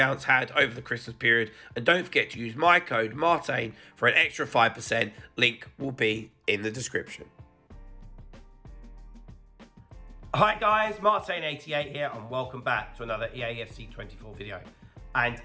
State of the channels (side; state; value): both; identical; correlation 1.00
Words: had over the Christmas period. And don't forget to use my code Martain for an extra 5%. Link will be in the description. Hi guys, Martain88 here and welcome back to another EAFC 24 video. And